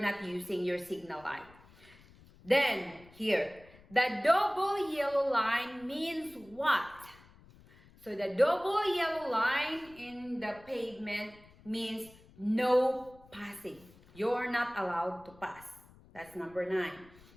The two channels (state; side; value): noise; left; rumble, 25 dB below the sound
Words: not using your signal light. Then here, the double yellow line means what? So the double yellow line in the pavement means no passing. You're not allowed to pass. That's number 9.